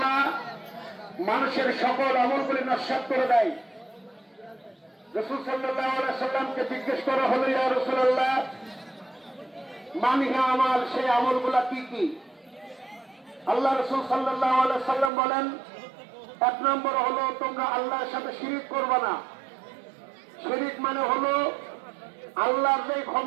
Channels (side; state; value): left; drops out; at 15.1 s